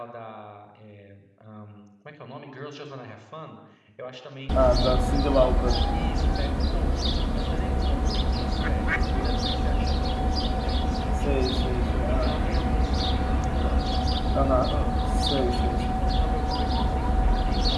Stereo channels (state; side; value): identical; both; correlation 1.00